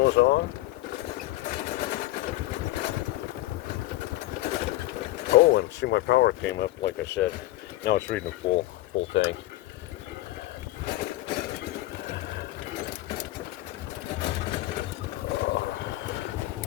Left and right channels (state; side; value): quieter; right; 17.1 dB